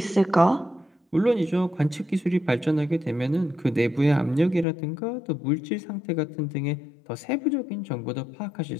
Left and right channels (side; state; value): right; drops out; at 4.7 s